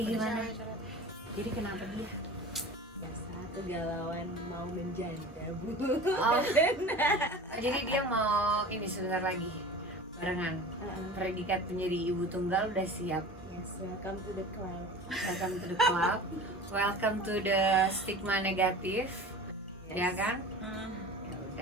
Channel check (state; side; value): normal; both; correlation 0.37